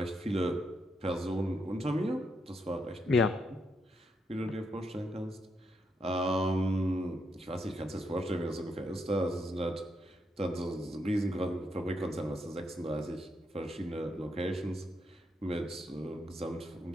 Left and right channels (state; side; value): normal; both; correlation 0.79